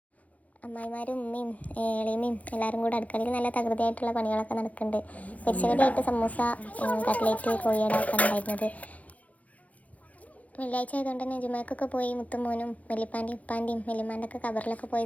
അമ്മായിമാരും ഉമ്മയും എളിയമ്മയും എല്ലാവരും കൂടെ അടുക്കളയിൽ നല്ല തകൃതിയായിട്ടുള്ള പണികളൊക്കെ നടക്കുന്നുണ്ട്. പൊരിച്ചകടിയായിട്ട് സമൂസ, കട്ട്ലേറ്റ്, കോഴിയട ഒക്കെ ഉണ്ടായിരുന്നത്. വെള്ളിയാഴ്ച ആയതുകൊണ്ട് തന്നെ ജുമാക്കൊക്കെ പോയി മുത്തുമോനും വെല്ലിപ്പാൻ്റെയും ഉപ്പാൻ്റെയും വെല്ലിമാൻ്റെ ഒക്കെ കബറിലൊക്കെ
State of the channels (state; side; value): late; right; 0.071 ms